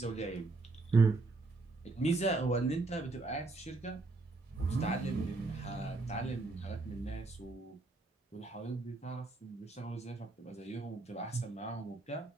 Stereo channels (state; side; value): quieter; left; 3.4 dB